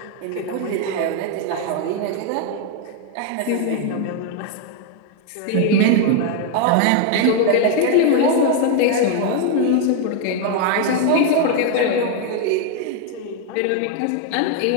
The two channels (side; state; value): both; different; correlation 0.01